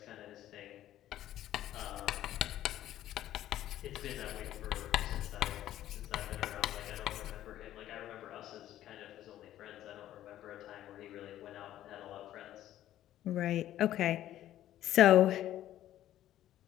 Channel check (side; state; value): right; quieter; 12.8 dB